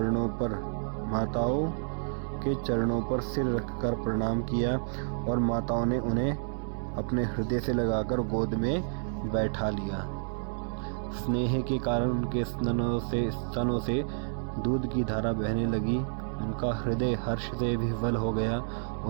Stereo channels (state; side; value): silent; left; 58 dB below the other